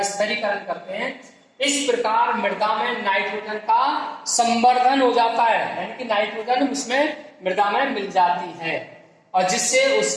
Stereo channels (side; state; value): both; identical; correlation 1.00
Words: स्थिरीकरण करते हैं। इस प्रकार मृदा में नाइट्रोजन का संवर्धन हो जाता है, यानी कि नाइट्रोजन उसमें मृदा में मिल जाती है और जिससे